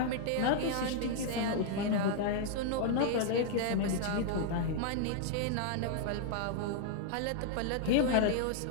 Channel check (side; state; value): both; different; correlation -0.01